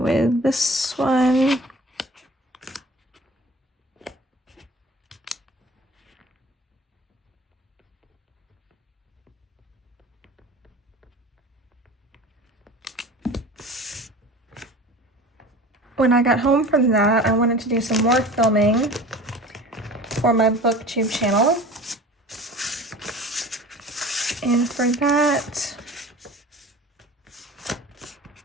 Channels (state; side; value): normal; both; correlation 0.40